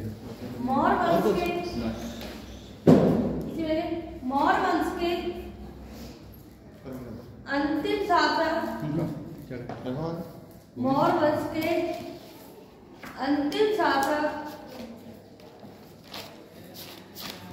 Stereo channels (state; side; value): identical; both; correlation 1.00